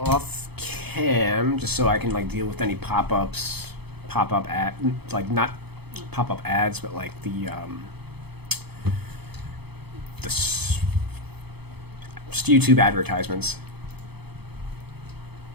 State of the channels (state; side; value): late; left; 0.97 ms